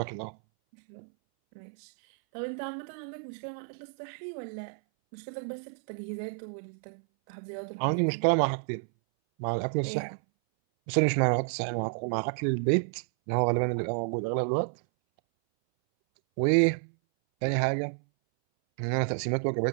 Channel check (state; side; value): silent; left; 58 dB below the other